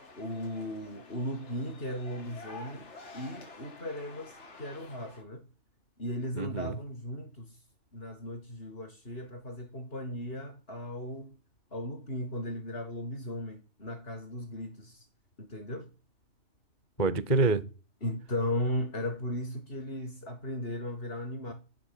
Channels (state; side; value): late; right; 2.7 ms